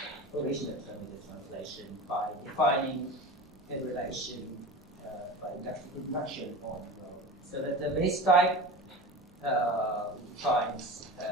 original term with the translation by defining a relation by induction on rho. So that the base type finds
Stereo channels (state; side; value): normal; both; correlation 0.32